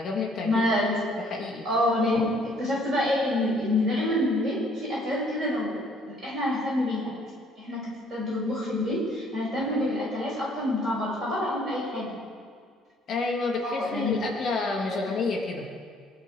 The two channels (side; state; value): both; normal; correlation 0.61